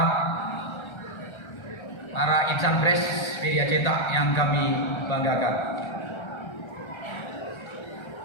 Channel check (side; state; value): right; late; 1.3 ms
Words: para insan pres media cetak yang kami banggakan.